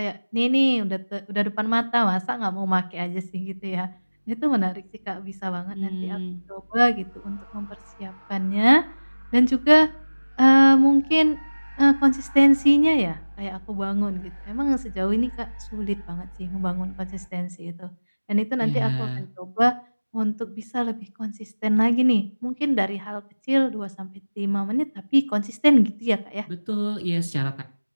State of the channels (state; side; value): inverted; both; correlation -1.00